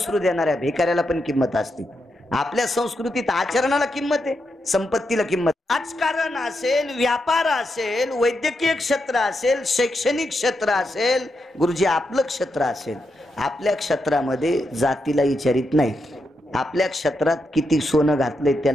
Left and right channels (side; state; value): both; normal; correlation 0.84